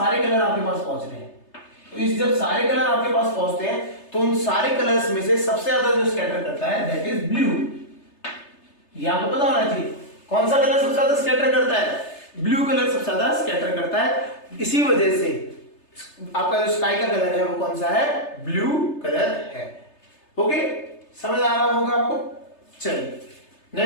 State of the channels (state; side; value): late; right; 3.3 ms